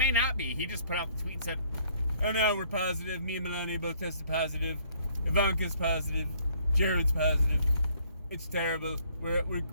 not be. He just put out the tweet and said, oh no, we're positive. Me and Melania both tested positive. Ivanka's positive. Jared's positive. It's terrible.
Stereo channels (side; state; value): both; inverted; correlation -0.62